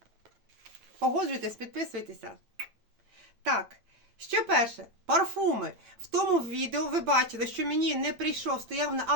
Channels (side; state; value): left; late; 8.8 ms